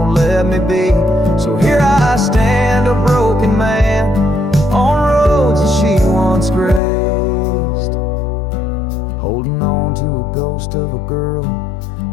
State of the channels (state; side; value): drops out; right; at 6.8 s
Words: let me be. So here I stand, a broken man, on roads that she once graced, holding on to a ghost of a girl